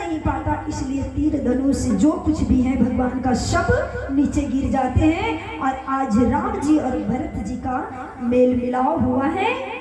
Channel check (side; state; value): both; identical; correlation 1.00